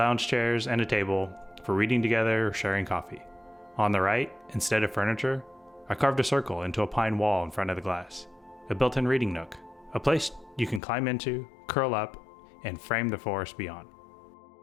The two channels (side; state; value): right; drops out; at 10.8 s